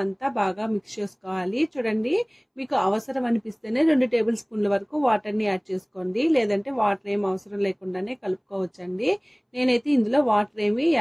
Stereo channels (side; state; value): both; identical; correlation 1.00